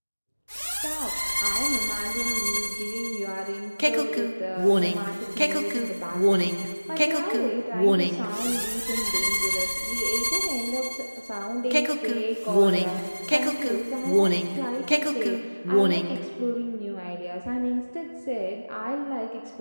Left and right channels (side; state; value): both; inverted; correlation -1.00